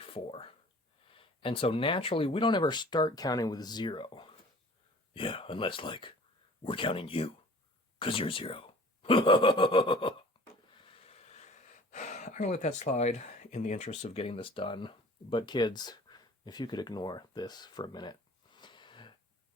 And so naturally, we don't ever start counting with 0. Yeah, unless, like, we're counting you, 'cause you're 0. I'm going to let that slide in the interest of getting this done. But kids, if you could ignore this for a minute.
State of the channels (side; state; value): both; normal; correlation 0.47